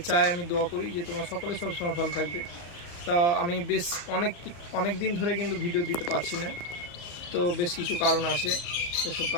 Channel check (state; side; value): late; right; 34 ms